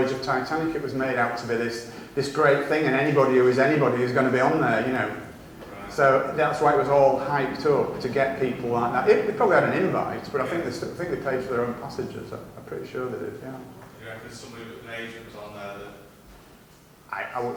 of Titanic. It was made out to be this great thing, and anybody who is anybody is going to be on there, you know. Right. So that's why it was all hyped up to get people like that. They probably had an invite, but I think they paid for their own passages. I'm pretty sure they did. Yeah. Do you reckon somebody with an agent was on there that... I would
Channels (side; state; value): both; identical; correlation 1.00